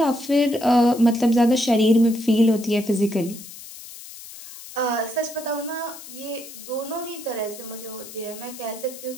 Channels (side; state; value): left; noise; hiss, 15 dB below the sound